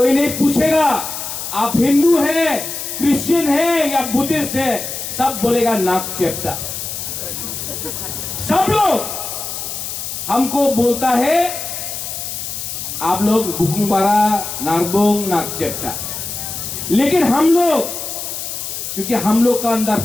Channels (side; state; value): left; noise; hiss, 6 dB below the sound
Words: नहीं पूछेगा आप हिंदू है, क्रिश्चियन है या बुद्धिस्ट है, सब बोलेगा नाक चेप्टा। सब लोग हमको बोलता है आप लोग बुकुंग बारा, नारबुंग, नाक चेप्टा। लेकिन हम लोग, क्योंकि हम लोग का अंदर